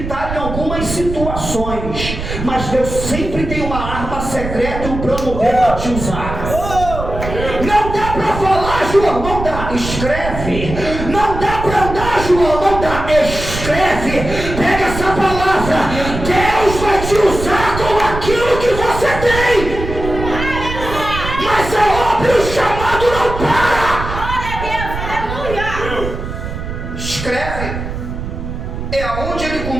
em algumas situações, mas Deus sempre tem uma arma secreta e um plano B para te usar. Não dá para falar, João, não dá, escreve. Não dá para andar, João, não dá, escreve. Pega essa palavra, Deus vai te usar com aquilo que você tem. Mas é óbvio, o chamado não para. Glória a Deus. Aleluia. Escreve. É aonde ele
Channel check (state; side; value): noise; right; rumble, 7 dB below the sound